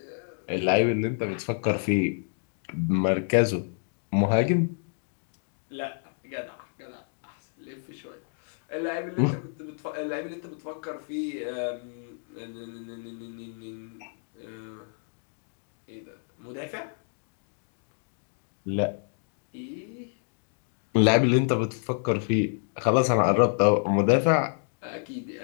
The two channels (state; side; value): silent; right; 57 dB below the other